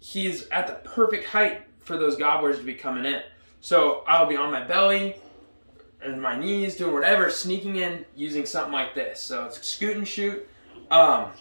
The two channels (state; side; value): inverted; both; correlation -1.00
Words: at the perfect height for those gobblers to be coming in. So I'll be on my belly and my knees, doing whatever, sneaking in using something like this. So it's scoot and shoot.